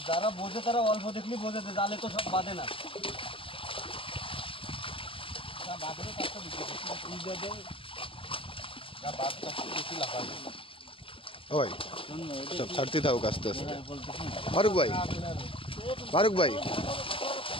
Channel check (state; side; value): late; right; 0.26 ms